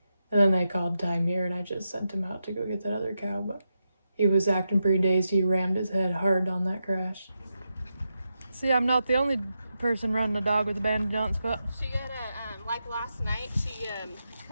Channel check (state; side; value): inverted; both; correlation -0.87